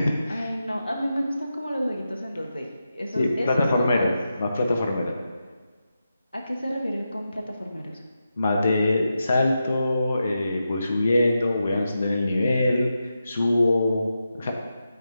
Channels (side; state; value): both; inverted; correlation -0.89